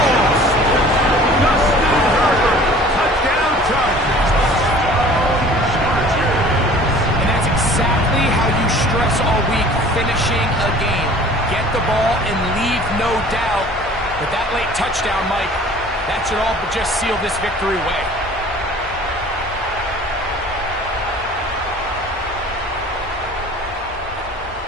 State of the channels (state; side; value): normal; both; correlation 0.47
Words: Justin Herbert, touchdown Chargers. And that's exactly how you stress all week, finishing a game. Get the ball and leave no doubt. But that late touchdown, Mike, that should all but just seal this victory away.